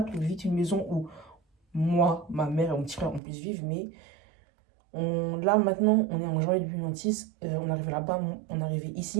trouve vite une maison où moi, ma mère et mon petit frère, on puisse vivre, mais là maintenant, on est en janvier 2026, on arrive là-bas, on est arrivé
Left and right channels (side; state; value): left; drops out; at 3.2 s